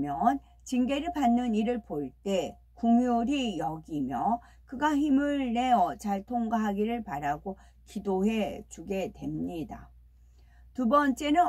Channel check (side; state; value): both; identical; correlation 1.00